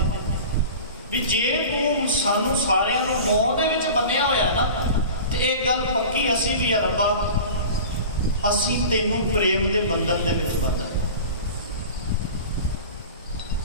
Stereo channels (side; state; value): both; inverted; correlation -0.36